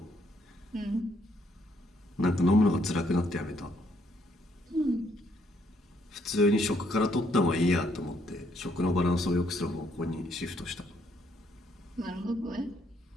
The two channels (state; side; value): normal; both; correlation 0.71